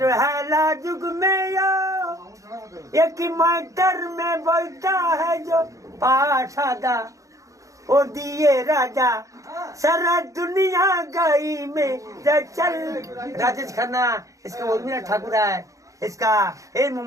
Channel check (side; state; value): left; late; 0.16 ms